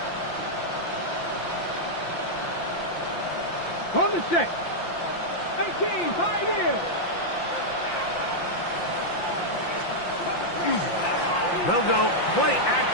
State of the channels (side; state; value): right; late; 5.8 ms